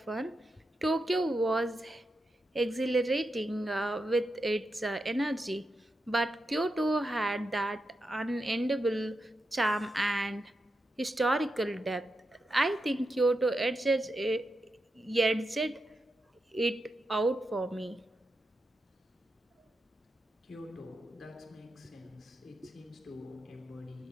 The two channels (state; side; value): normal; both; correlation 0.87